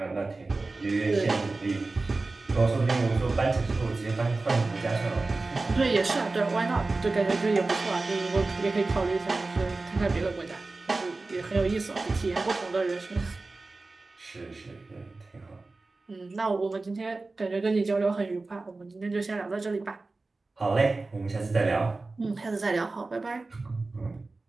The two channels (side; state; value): left; quieter; 3.5 dB